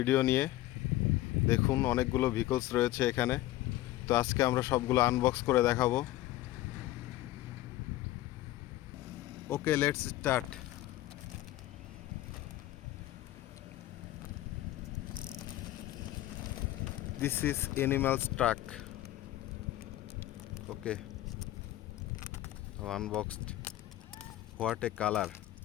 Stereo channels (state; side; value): quieter; right; 15.5 dB